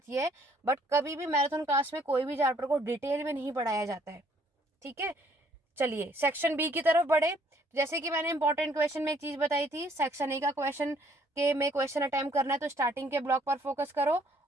ये है। बट कभी भी मैराथन क्लास में कोई भी चैप्टर को डिटेल में नहीं पढ़ाया जाता है, ठीक है। चलिए सेक्शन बी की तरफ बढ़े। जैसे कि मैंने इंपॉर्टेंट क्वेश्चन में एक चीज बताई थी, सेक्शन ए का क्वेश्चन के में क्वेश्चन अटेम्प्ट करना है तो स्टार्टिंग के ब्लॉक पर फोकस करो,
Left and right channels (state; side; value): normal; both; correlation 0.63